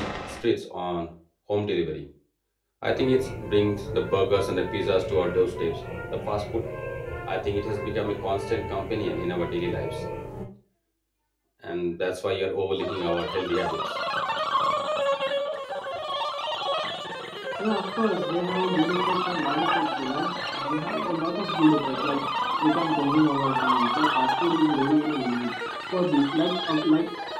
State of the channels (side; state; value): both; identical; correlation 1.00